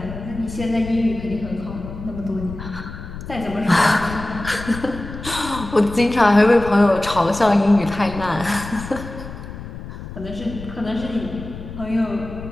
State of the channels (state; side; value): noise; left; rumble, 11 dB below the sound